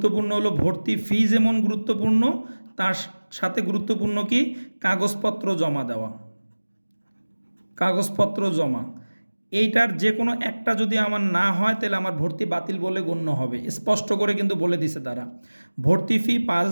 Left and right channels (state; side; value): inverted; both; correlation -1.00